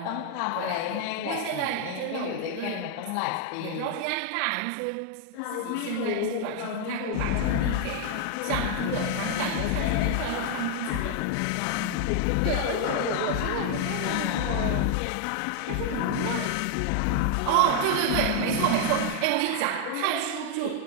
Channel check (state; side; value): different; both; correlation 0.00